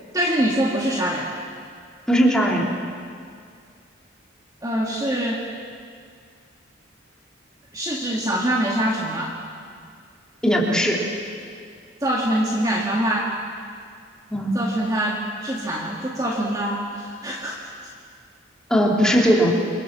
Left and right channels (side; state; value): both; normal; correlation 0.65